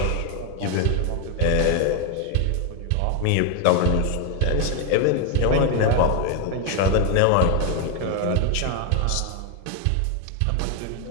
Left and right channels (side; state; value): both; different; correlation 0.01